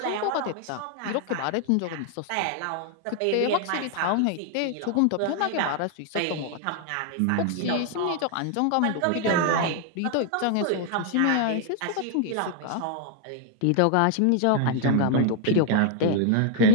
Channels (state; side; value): different; both; correlation 0.00